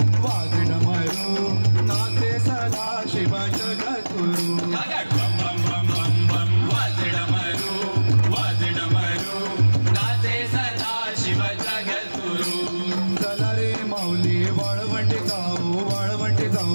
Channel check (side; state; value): both; inverted; correlation -1.00